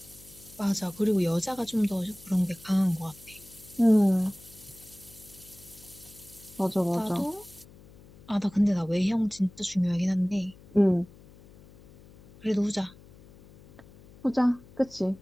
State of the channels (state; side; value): noise; left; hum, 23 dB below the sound